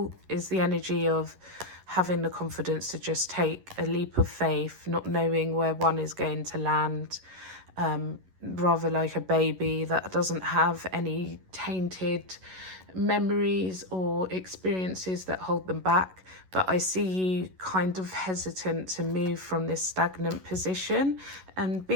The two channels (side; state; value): left; late; 11 ms